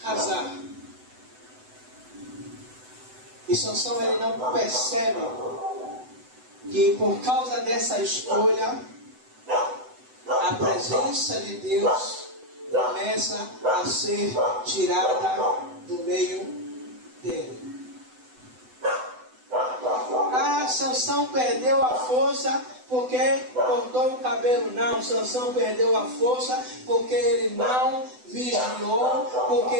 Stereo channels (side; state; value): left; late; 8.0 ms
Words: casar. E Sansão ele não percebe que por causa dessa escolha, a presença de Deus começa a ser tirada do meio dele. Sansão perdeu a força porque cortou o cabelo. Não, Sansão perdeu a força porque ele não vigiou, porque